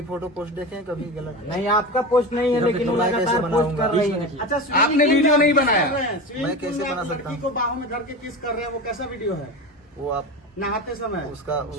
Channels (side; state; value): both; normal; correlation 0.26